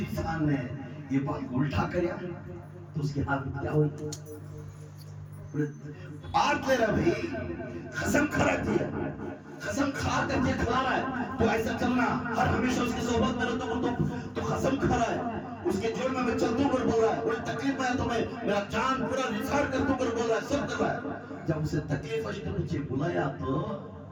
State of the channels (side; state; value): both; identical; correlation 1.00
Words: نے یہ بات الٹا کریا تو اس کے ہاتھ میں کیا ہوئی؟ آج لے رہا بھئی قسم کھا رہتی ہے, قسم کھا کر کے کھلا رہا ہے تو ایسا چلنا ہر ہمیشہ اس کی صحبت میں رہتا تو قسم کھا رہا ہے. اس کے جوڑ میں چلتوں کر بول رہا ہے, کوئی تکلیف میں ہے تو میں میرا جان پورا نثار کرتوں کر بول رہا ہے, سب کر رہا ہے. جب اسے تکلیف اشتے مجھے بلایا تو